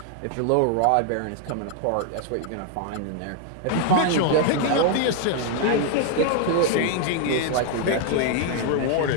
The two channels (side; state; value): both; different; correlation 0.00